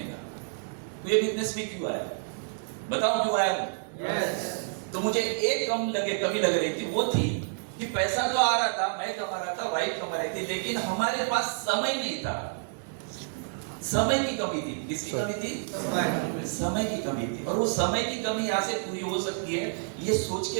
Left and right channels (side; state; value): left; silent; digital silence